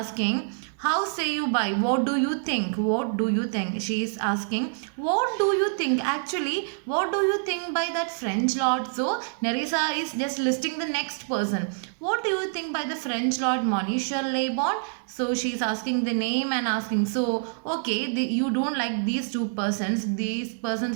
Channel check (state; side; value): silent; left; digital silence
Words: how say you by? What do you think? What do you think? She is asking, what do you think? Actually, what do you think by that French lord? So, Nerissa is just listing the next person. What do you think by the French lord, Monsieur Lebon? So, she is asking the name and asking, so, okay, you don't like these two persons. These